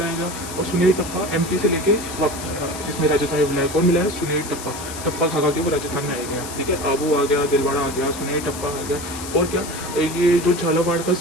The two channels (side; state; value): left; noise; hiss, 11 dB below the sound